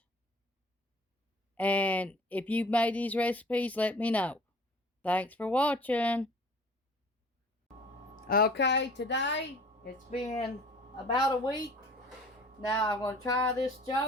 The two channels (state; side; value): normal; both; correlation 0.49